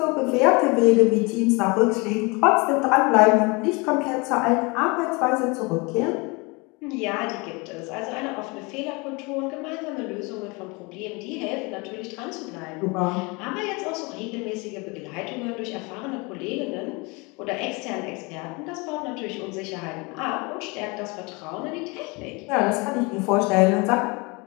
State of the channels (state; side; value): quieter; right; 27.7 dB